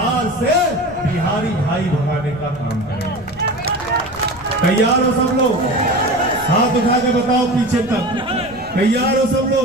से बिहारी भाई भगाने का काम करें। तैयार हो सब लोग? हाथ उठा के बताओ पीछे तक। तैयार हो सब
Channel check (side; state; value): left; noise; rumble, 20 dB below the sound